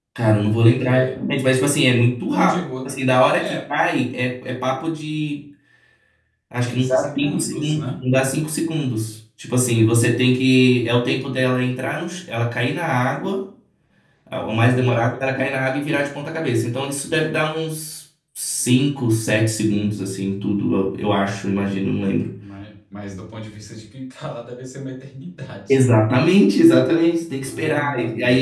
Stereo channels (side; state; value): both; identical; correlation 1.00